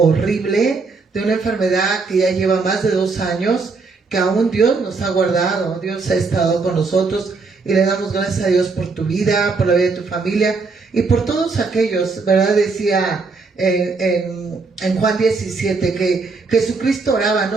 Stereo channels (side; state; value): left; quieter; 4.3 dB